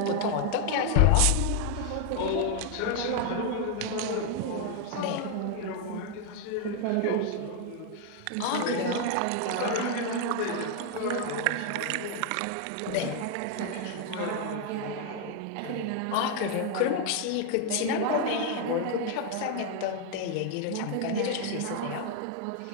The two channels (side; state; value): both; different; correlation 0.00